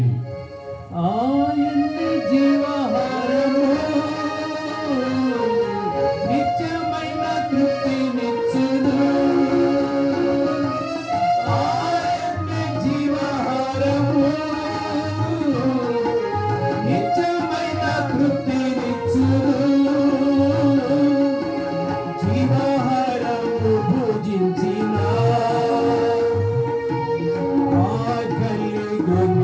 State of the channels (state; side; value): identical; both; correlation 1.00